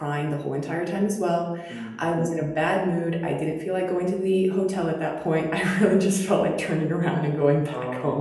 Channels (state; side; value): identical; both; correlation 1.00